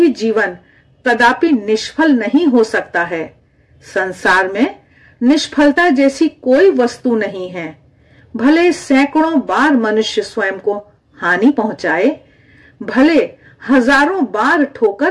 जीवन कदापि निष्फल नहीं हो सकता है। संसार में निष्फलता जैसी कोई वस्तु नहीं है। भले सैकड़ों बार मनुष्य स्वयं को हानि पहुंचाए, भले हजारों बार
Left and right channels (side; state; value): both; identical; correlation 1.00